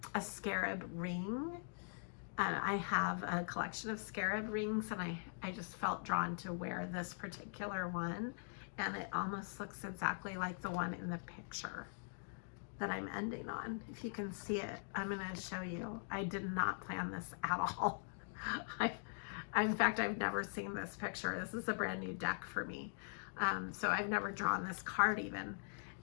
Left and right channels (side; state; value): right; silent; digital silence